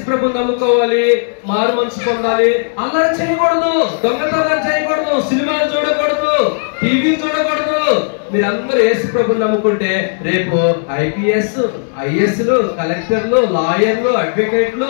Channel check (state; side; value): silent; right; digital silence